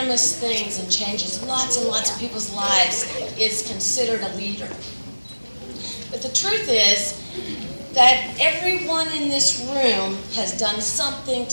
things and changes lots and lots of people's lives is considered a leader. But the truth is that everyone in this room has done something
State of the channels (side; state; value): both; inverted; correlation -1.00